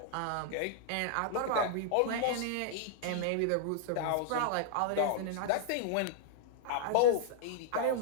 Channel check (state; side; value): different; both; correlation -0.01